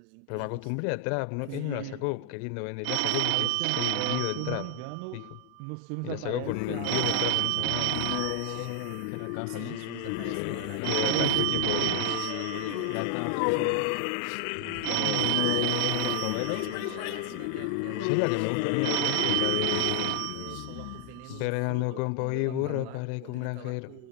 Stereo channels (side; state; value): both; different; correlation 0.00